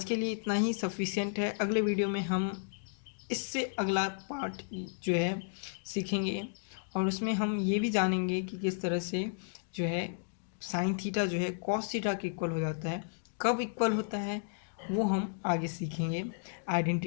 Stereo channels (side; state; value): right; silent; digital silence